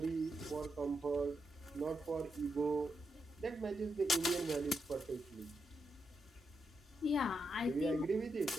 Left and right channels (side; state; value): both; normal; correlation 0.83